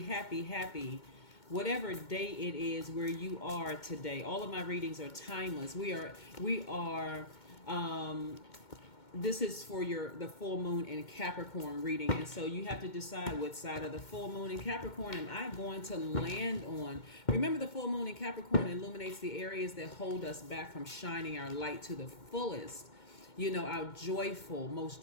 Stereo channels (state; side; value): late; right; 2.2 ms